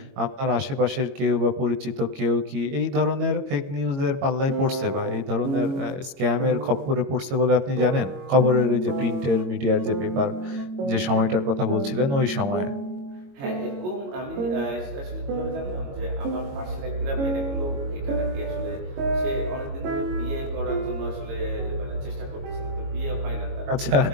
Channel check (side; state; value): left; late; 22 ms